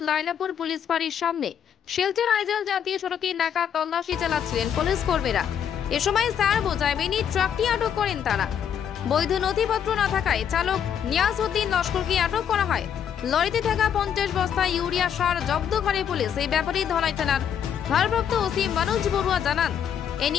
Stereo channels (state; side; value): quieter; right; 8.6 dB